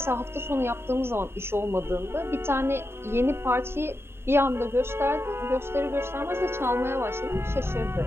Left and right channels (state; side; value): late; left; 0.12 ms